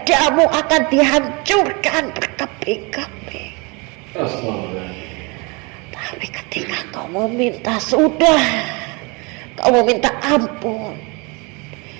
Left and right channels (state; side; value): quieter; left; 28.9 dB